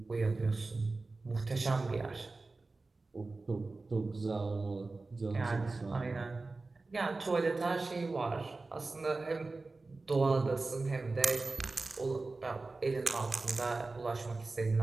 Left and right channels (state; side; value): quieter; left; 3.5 dB